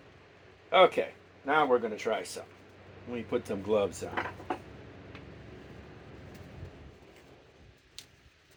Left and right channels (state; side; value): identical; both; correlation 1.00